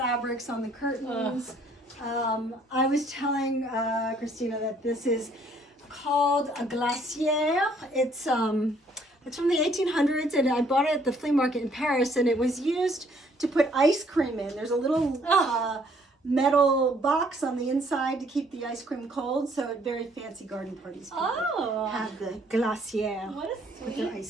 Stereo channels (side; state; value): both; normal; correlation 0.63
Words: on the curtains. I was telling Christina that this is called a glacière. It's from the 1800s, and I bought it at the flea market in Paris, and it was used to put ice cream in. There's a little metal box on the inside to keep the ice cream cold, so at very fancy garden parties people have the glacière. What With a their sweet ice